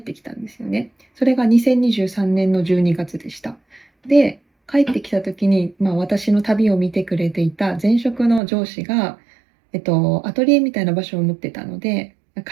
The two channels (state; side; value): drops out; left; at 8.4 s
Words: てきたんですよね。それが2023年の12月でした。で、帰ってきた時に、私の旅を見てくれていた前職の上司が、アトリエみたいな場所を持ってたので、